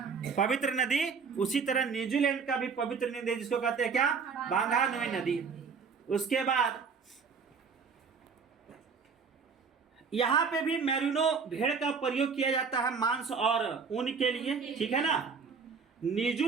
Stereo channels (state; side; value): quieter; left; 5.5 dB